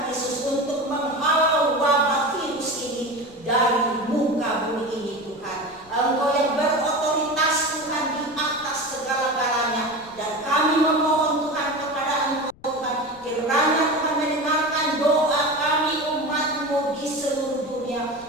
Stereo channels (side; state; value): left; noise; rumble, 26 dB below the sound